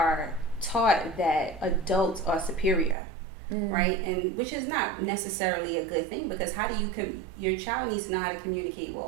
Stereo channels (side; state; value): left; drops out; at 3.0 s